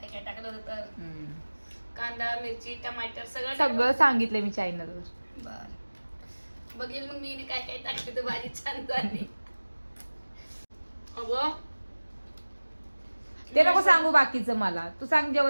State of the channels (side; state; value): both; inverted; correlation -1.00